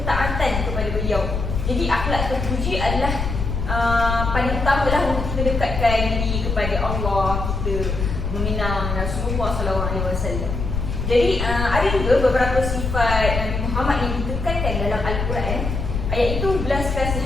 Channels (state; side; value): noise; left; rumble, 3 dB below the sound